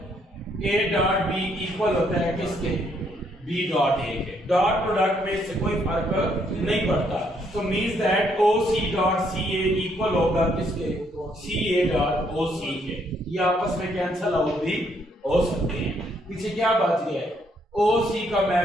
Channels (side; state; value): both; normal; correlation 0.71